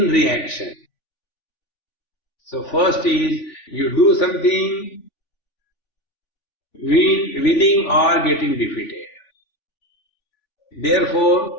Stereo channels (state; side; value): late; right; 3.5 ms